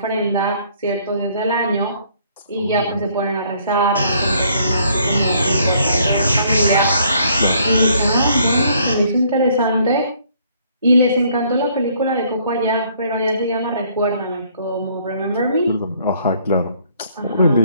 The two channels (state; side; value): inverted; both; correlation -0.64